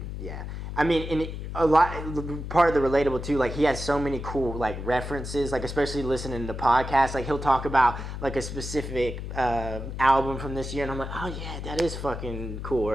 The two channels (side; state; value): left; noise; hum, 7 dB below the sound